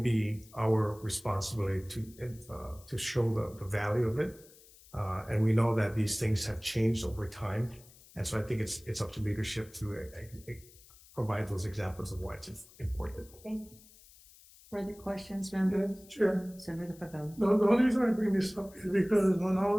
be our responsibility to show the value of it. And we know that these things have changed over time. And so I think it's up to leadership to provide those examples of why it's important. Thank you. Further questions, members? Sure. Senator Pavel. The only reason I bring this up is because when I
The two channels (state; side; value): noise; left; hiss, 24 dB below the sound